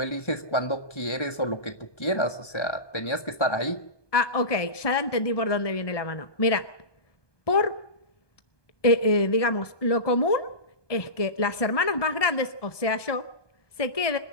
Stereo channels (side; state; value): right; late; 1.2 ms